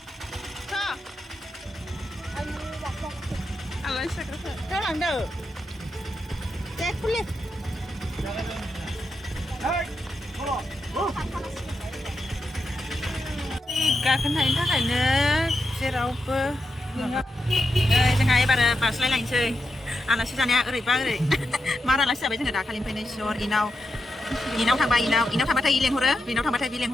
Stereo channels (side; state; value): both; normal; correlation 0.86